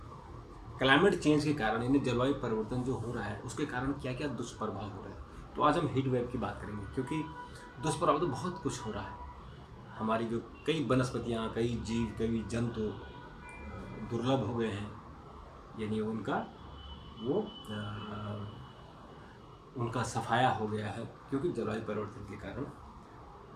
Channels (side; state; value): both; identical; correlation 1.00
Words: क्लाइमेट चेंज के कारण यानी जलवायु परिवर्तन जो हो रहा है उसके कारण क्या क्या दुष्प्रभाव हो रहे हैं। तो आज हम हीट वेव की बात करेंगे क्योंकि दुष्प्रभाव तो बहुत कुछ हो रहा है। हमारी जो कई वनस्पतियाँ, कई जीव, कई जंतु दुर्लभ हो गए हैं, यानी उनका सफाया हो गया है क्योंकि जलवायु परिवर्तन के कारण।